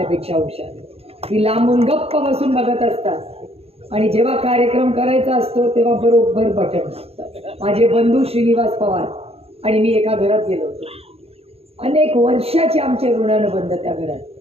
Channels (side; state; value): left; late; 0.29 ms